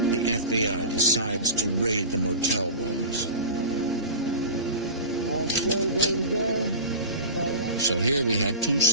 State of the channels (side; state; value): both; inverted; correlation -0.32